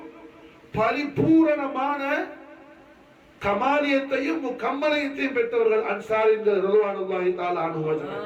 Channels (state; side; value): identical; both; correlation 1.00